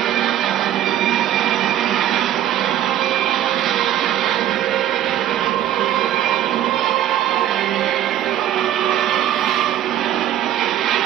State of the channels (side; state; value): left; quieter; 11.9 dB